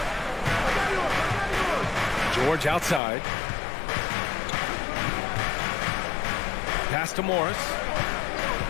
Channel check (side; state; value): right; drops out; at 3.0 s